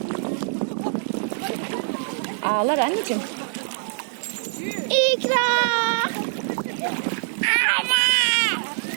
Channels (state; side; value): silent; left; digital silence